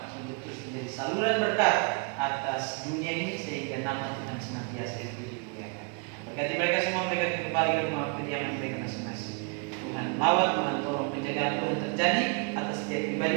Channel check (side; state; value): left; quieter; 35.1 dB